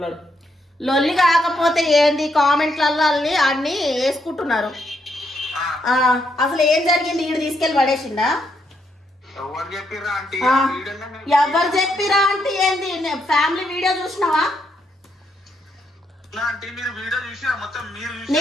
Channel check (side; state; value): both; normal; correlation 0.77